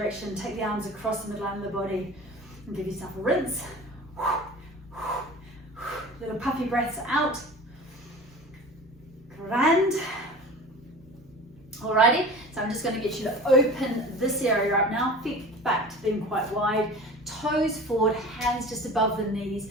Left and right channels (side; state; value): both; normal; correlation 0.38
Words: take the arms across the midline of the body and give yourself a rinse. Little puffy breaths out. Grand. Alrighty, so I'm just going to get you to open this area up now. Feet back to being quite wide. Toes forward, hands just above the knees.